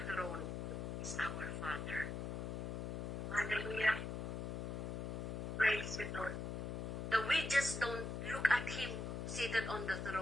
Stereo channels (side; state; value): left; noise; hum, 3 dB below the sound